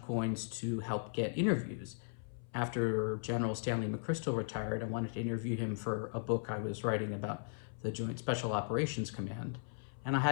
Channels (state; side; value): silent; right; 53 dB below the other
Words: coins to help get interviews. After General Stanley McChrystal retired, I wanted to interview him for a book I was writing about the Joint Special Operations Command. And I